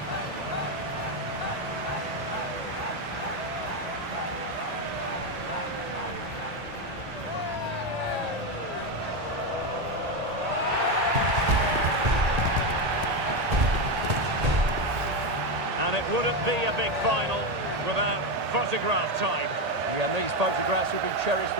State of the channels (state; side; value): late; left; 1.8 ms